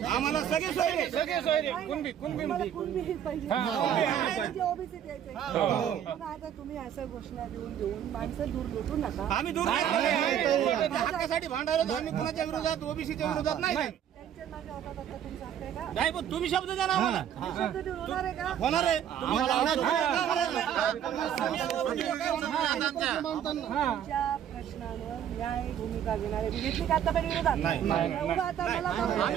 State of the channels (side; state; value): left; quieter; 9.7 dB